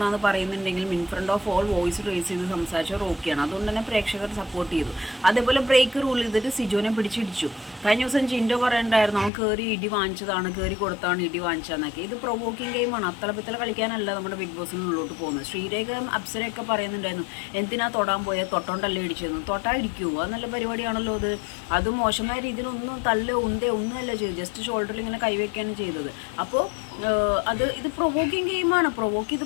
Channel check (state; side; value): drops out; right; at 9.3 s